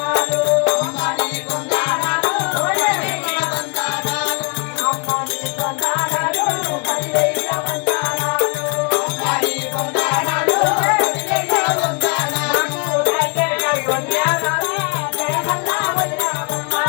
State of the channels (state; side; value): quieter; right; 36.0 dB